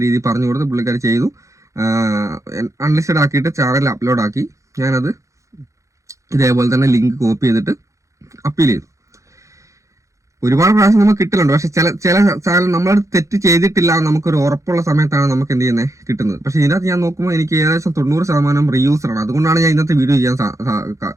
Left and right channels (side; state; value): left; late; 0.15 ms